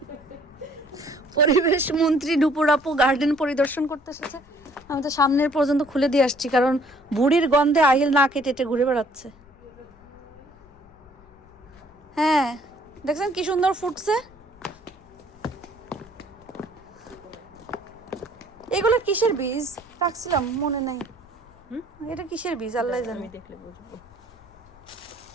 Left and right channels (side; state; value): left; noise; rumble, 26 dB below the sound